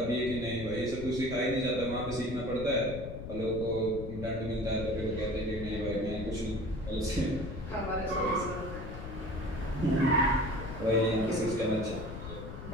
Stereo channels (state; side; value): noise; left; rumble, 9 dB below the sound